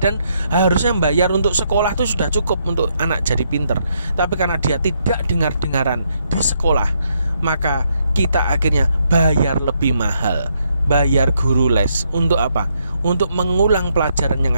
harusnya bayar untuk sekolah itu sudah cukup untuk anak jadi pinter. Tapi karena dia tidak dengar-dengaran di sekolah, maka kita akhirnya bayar lebih mahal. Bayar guru les. Untuk apa? Untuk mengulang pelajaran yang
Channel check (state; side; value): inverted; both; correlation -0.75